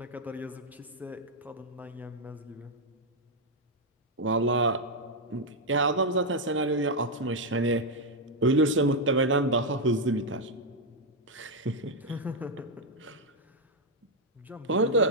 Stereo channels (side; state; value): both; normal; correlation 0.00